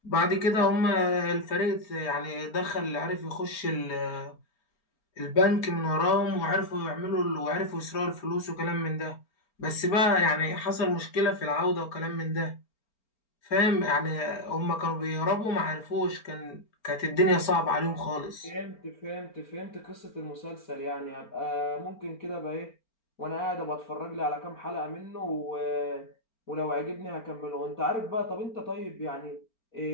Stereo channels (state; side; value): late; right; 4.4 ms